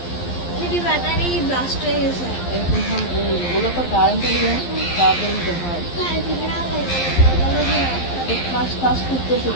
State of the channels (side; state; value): right; late; 11 ms